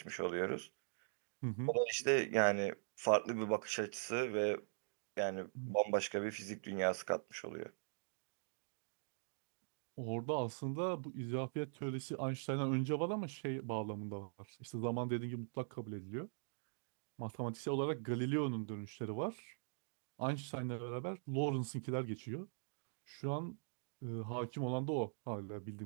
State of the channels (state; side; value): silent; left; digital silence